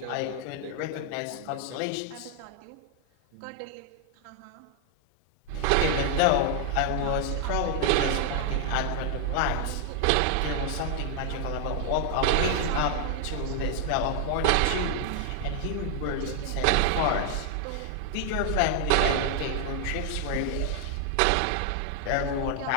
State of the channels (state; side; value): different; both; correlation 0.00